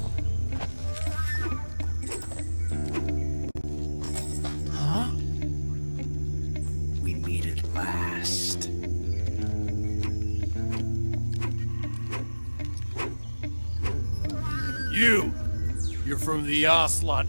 We meet at last. You're from the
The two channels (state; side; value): inverted; both; correlation -1.00